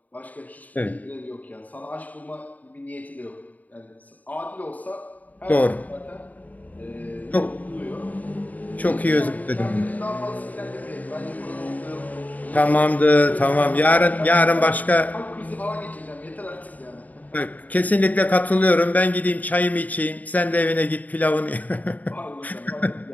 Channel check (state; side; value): late; right; 0.076 ms